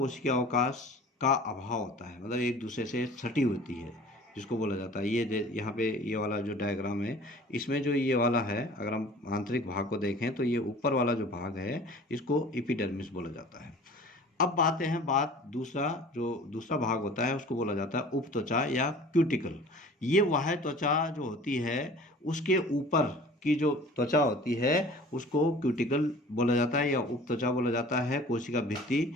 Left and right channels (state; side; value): normal; both; correlation 0.44